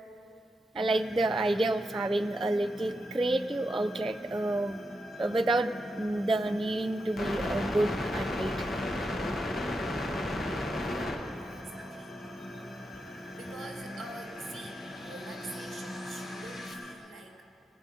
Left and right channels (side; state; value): both; normal; correlation 0.86